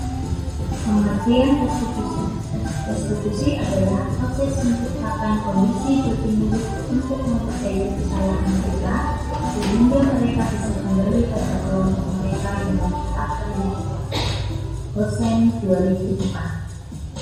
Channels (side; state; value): both; identical; correlation 1.00